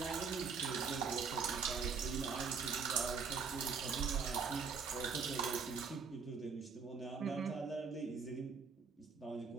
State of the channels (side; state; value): left; quieter; 5.5 dB